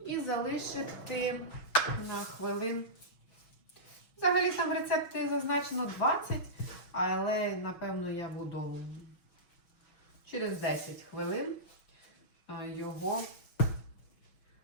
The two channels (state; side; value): late; right; 6.1 ms